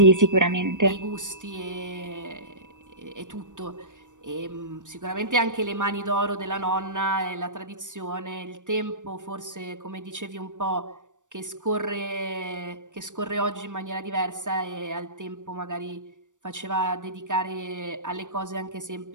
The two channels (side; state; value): left; late; 0.87 ms